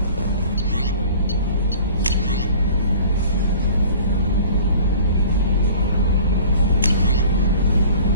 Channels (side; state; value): both; inverted; correlation -0.46